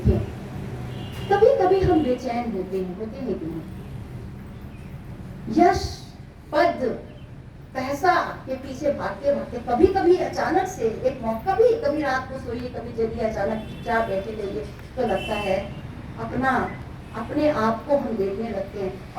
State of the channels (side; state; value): both; identical; correlation 1.00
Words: कभी कभी हम बेचैन होते हैं कि नहीं? यश, पद, पैसा के पीछे भागते भागते कभी कभी अचानक से एक मौका, कभी रात को सोइए, कभी जल्दी अचानक चुपचाप बैठे रहिए तो लगता है अपने आप को हम देखने लगते हैं।